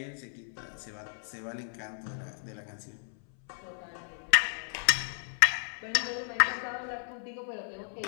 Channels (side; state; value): right; silent; 56 dB below the other